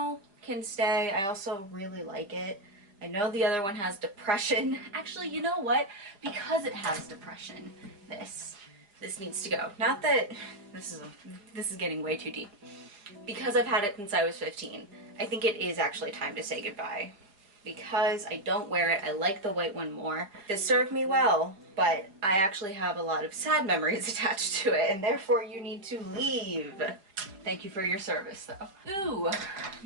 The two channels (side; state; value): left; late; 4.9 ms